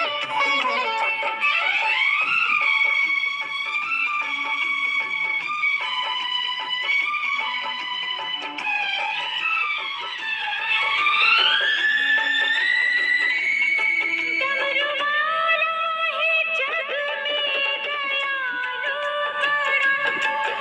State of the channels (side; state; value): both; identical; correlation 1.00